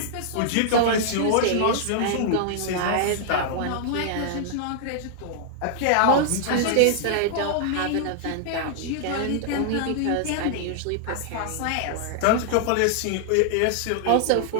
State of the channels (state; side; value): different; both; correlation -0.01